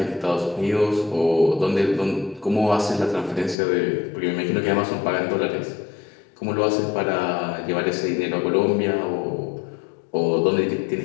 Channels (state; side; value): drops out; right; at 3.6 s